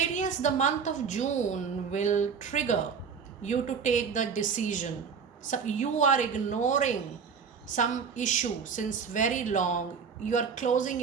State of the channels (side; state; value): left; quieter; 6.1 dB